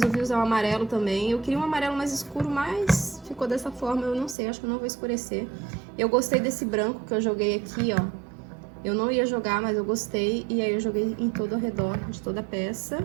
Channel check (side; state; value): left; drops out; at 4.4 s